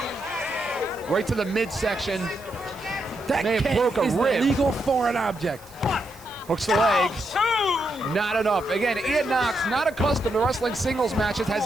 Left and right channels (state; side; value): noise; right; hiss, 23 dB below the sound